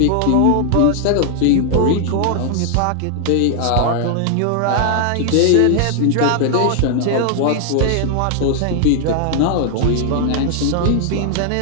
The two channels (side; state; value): both; different; correlation 0.00